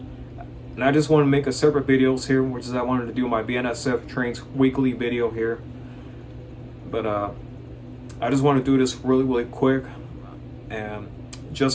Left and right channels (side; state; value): both; identical; correlation 1.00